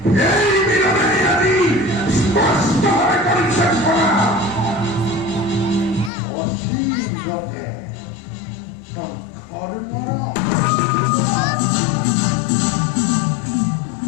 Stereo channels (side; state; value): right; drops out; at 6.1 s